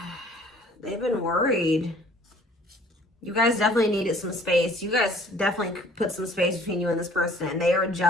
worried. You guys definitely needed some space. You guys definitely put some space between you and this person. And they are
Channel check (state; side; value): normal; both; correlation 0.54